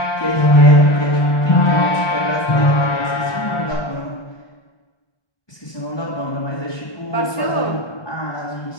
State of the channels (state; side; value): late; right; 1.1 ms